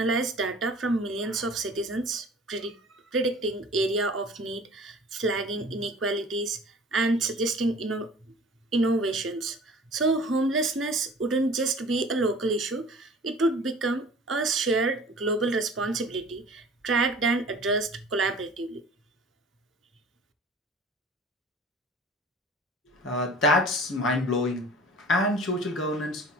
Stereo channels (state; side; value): normal; both; correlation 0.45